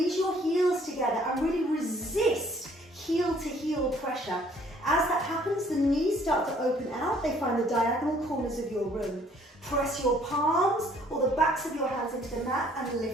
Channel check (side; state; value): both; normal; correlation 0.60